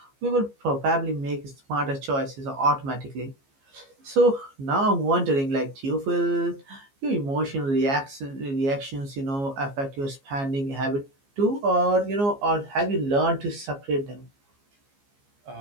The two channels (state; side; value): late; left; 15 ms